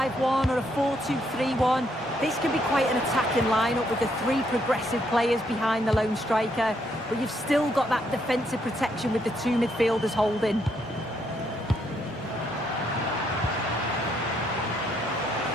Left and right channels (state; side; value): normal; both; correlation 0.74